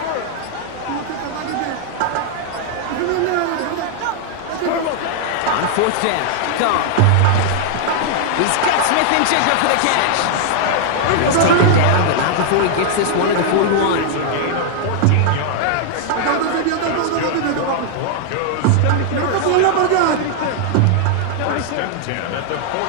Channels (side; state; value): both; different; correlation 0.00